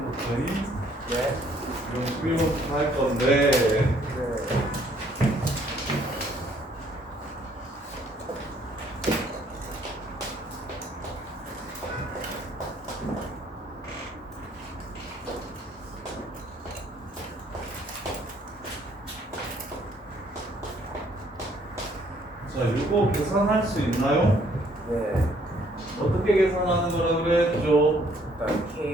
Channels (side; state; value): both; normal; correlation 0.64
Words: 네. 11번부터 할 건데 네. 자, 이거 계산할 수 있나요? 네. 어떻게 계산하는 거라 그랬죠? 일단